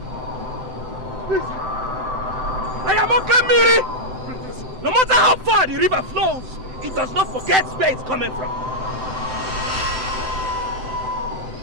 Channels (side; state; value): left; late; 7.8 ms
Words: Please. I am okay, Miri. No matter how far the river flows, it does not forget where it's coming from.